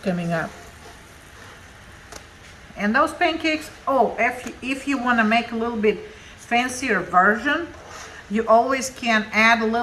coming up. And those pancakes, oh, if you want to make a little bit fancier version, you always can add a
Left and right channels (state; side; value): identical; both; correlation 1.00